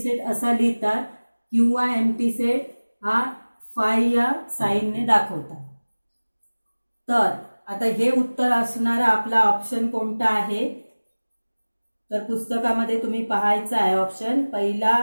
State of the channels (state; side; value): inverted; both; correlation -1.00